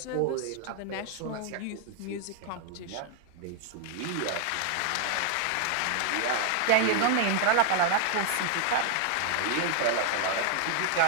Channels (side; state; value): both; different; correlation 0.00